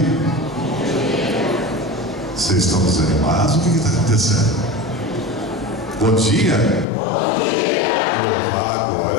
Vocês estão desanimados? O que está acontecendo? Bom dia. Bom dia.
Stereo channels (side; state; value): right; drops out; at 6.9 s